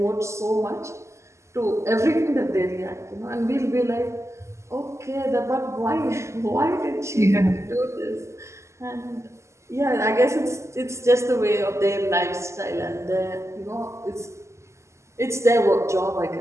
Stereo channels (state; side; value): late; left; 0.13 ms